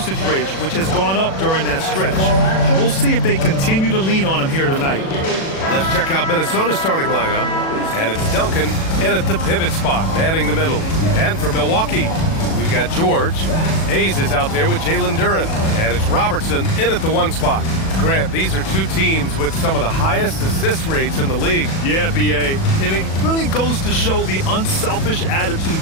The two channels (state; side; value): late; right; 37 ms